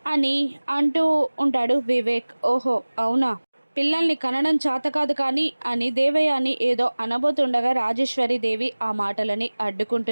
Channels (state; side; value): inverted; both; correlation -1.00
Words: అని అంటూ ఉంటాడు వివేక్. ఓహో అవునా, పిల్లల్ని కనడం చేత కాదు కానీ అని దేవయాని ఏదో అనబోతుండగా రాజేశ్వరి దేవి ఆ మాటలని